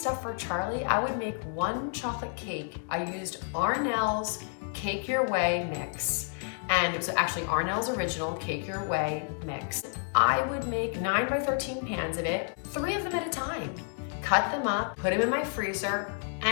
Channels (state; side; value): silent; right; 55 dB below the other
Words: for Charlie, I would make 1 chocolate cake. I used Arnell's Cake Your Way mix. And it was actually Arnell's original Cake Your Way mix. I would make 9 by 13 pans of it, 3 of them at a time. Cut them up, put them in my freezer,